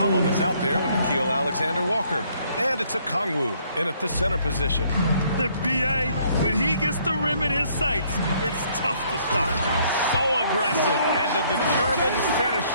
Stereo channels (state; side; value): inverted; both; correlation -0.65